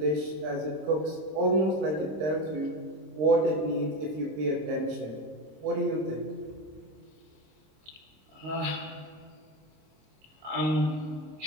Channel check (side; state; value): left; late; 26 ms